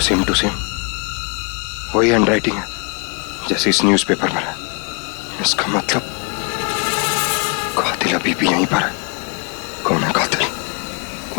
सेम टू सेम वही हैंडराइटिंग है जैसे इस न्यूज़पेपर में है। इसका मतलब कातिल अभी भी यहीं पर है। कौन है कातिल?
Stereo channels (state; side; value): quieter; right; 34.0 dB